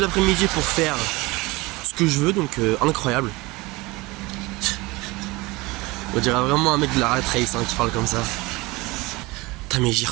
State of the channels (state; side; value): quieter; left; 22.7 dB